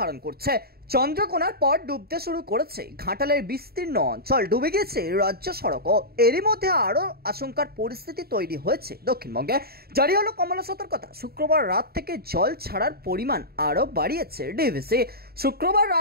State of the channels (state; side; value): late; left; 0.45 ms